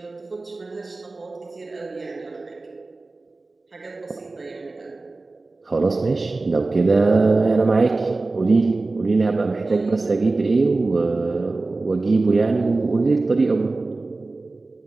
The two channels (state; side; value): quieter; left; 3.4 dB